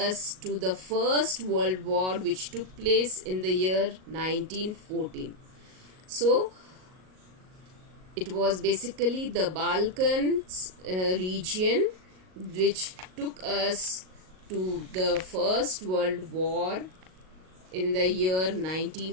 to the First World War, which took place in the year 1914. So it was basically the Balkans region which took us to the First World War in the year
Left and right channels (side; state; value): left; late; 38 ms